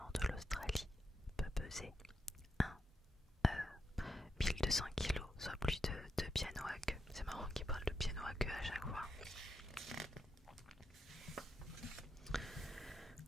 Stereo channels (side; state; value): both; normal; correlation 0.84